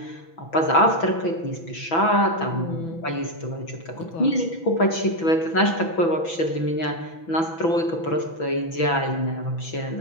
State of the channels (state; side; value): late; right; 6.1 ms